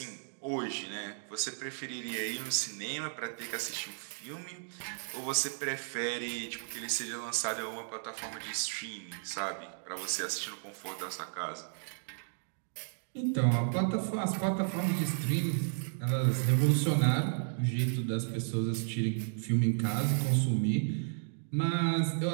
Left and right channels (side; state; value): left; silent; digital silence